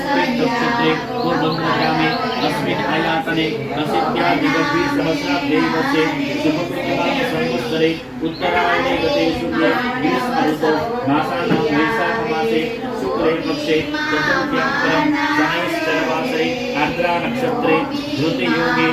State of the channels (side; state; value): both; identical; correlation 1.00